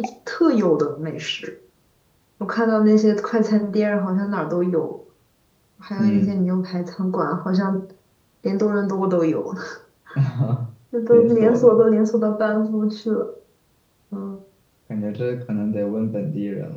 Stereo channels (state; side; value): identical; both; correlation 1.00